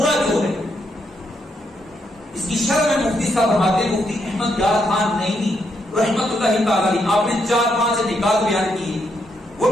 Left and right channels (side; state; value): both; normal; correlation 0.78